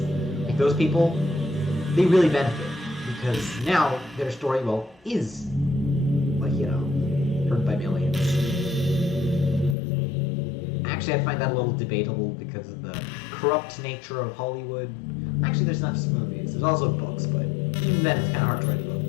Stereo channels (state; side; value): drops out; right; at 9.8 s